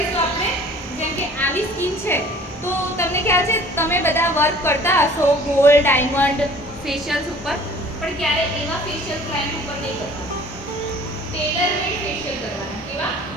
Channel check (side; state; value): both; normal; correlation 0.50